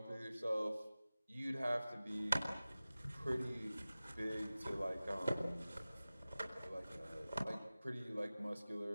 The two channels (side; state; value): both; inverted; correlation -0.97